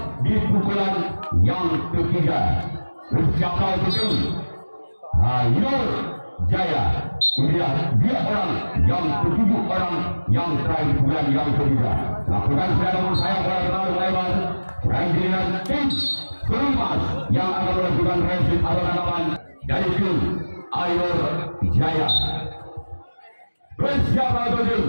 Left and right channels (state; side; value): inverted; both; correlation -1.00